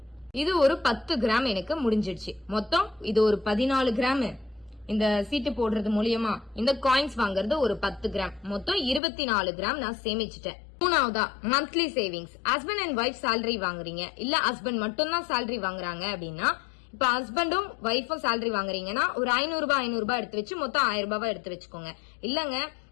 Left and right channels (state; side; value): drops out; right; at 9.0 s